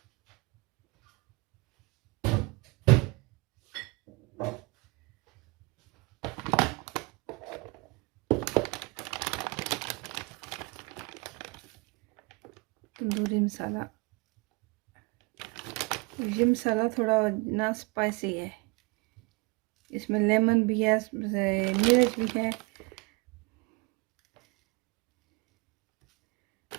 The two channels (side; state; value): left; quieter; 26.0 dB